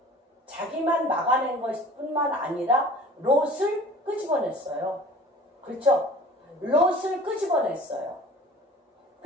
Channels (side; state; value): both; normal; correlation 0.45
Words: 자기만 막아낸 것뿐만 아니라 롯을 끄집어냈어요. 그렇죠? 롯을 끄집어냈어요.